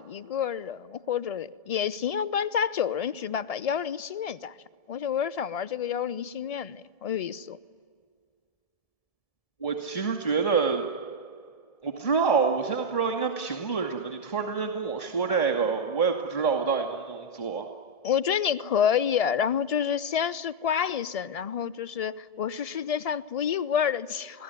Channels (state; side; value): late; right; 1.7 ms